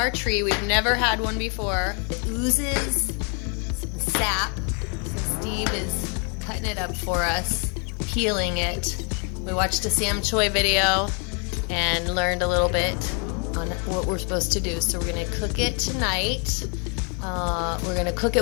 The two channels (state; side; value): quieter; right; 37.5 dB